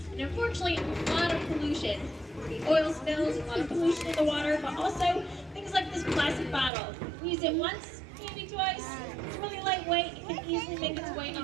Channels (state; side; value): drops out; left; at 6.7 s